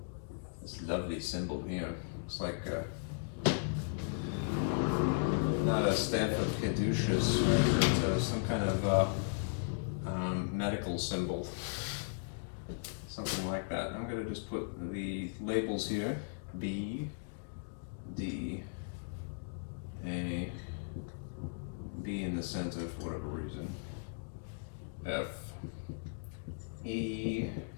This lovely symbol here looks like not a staff of caduceus, but some kind of medical symbol, something like that. I'm going to just put the labels here: B, D, A, B in the center for whatever reason, F, E,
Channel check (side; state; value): right; silent; digital silence